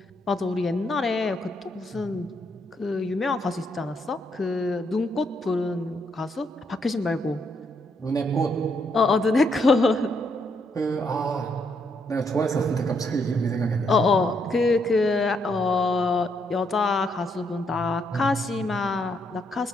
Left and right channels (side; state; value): both; normal; correlation 0.75